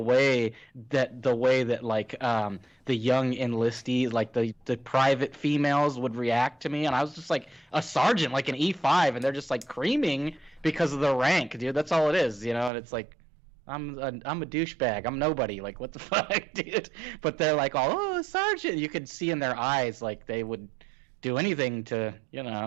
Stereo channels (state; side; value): drops out; left; at 12.7 s